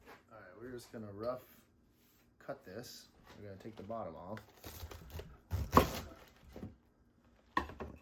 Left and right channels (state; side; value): identical; both; correlation 1.00